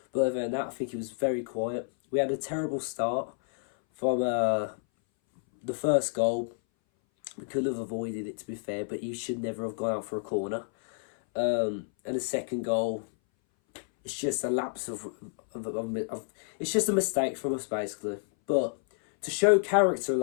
but other than that, I think he was very quiet. We had a terrible start from the first goal. We could have avoided it, to be fair, but he should never have gone out for a corner. And the second goal, it's just a lapse of it's just a mistake from us, basically. But to show character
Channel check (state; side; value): silent; right; 58 dB below the other